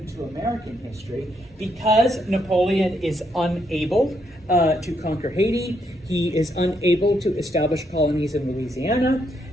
American history, because Napoleon is unable to conquer Haiti. He is unable to establish colonies in Louisiana.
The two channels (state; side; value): normal; both; correlation 0.76